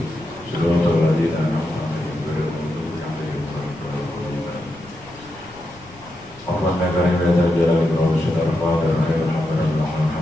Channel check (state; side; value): noise; left; rumble, 24 dB below the sound